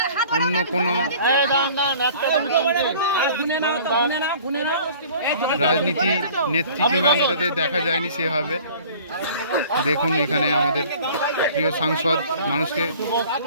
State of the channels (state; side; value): inverted; both; correlation -0.48